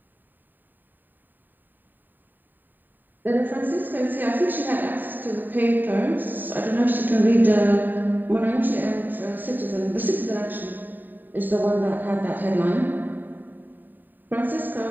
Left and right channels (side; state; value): left; late; 0.090 ms